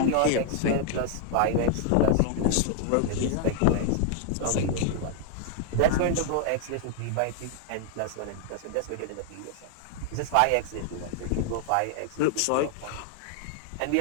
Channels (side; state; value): both; different; correlation 0.00